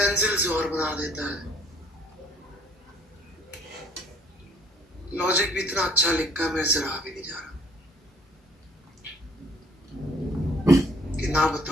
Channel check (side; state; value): both; normal; correlation 0.58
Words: से और बना देता है। लॉजिक भी इतना अच्छा लिखा है, मेरे से रहा भी नहीं जा रहा कि ना